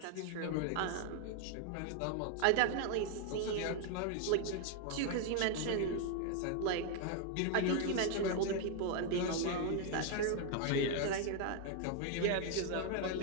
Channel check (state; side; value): different; both; correlation 0.00